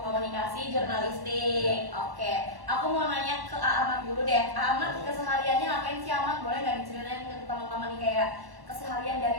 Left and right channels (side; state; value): left; late; 1.1 ms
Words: Komunikasi Jurnalistik. Oke, aku mau nanya ke Ahmad dulu deh. Ahmad kesehariannya ngapain sih Ahmad? Boleh nggak diceritain ke teman-teman nih kayak keseharian